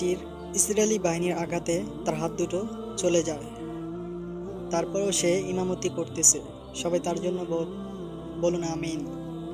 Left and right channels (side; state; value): both; identical; correlation 1.00